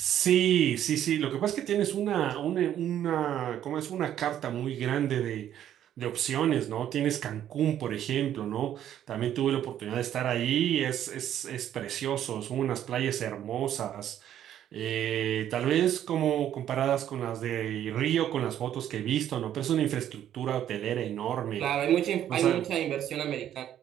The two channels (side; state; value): left; quieter; 10.9 dB